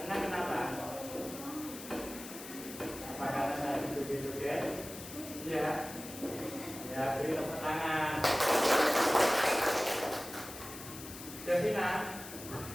Ya, ya, beri tepuk tangan. Devina,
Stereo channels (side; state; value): left; noise; hiss, 12 dB below the sound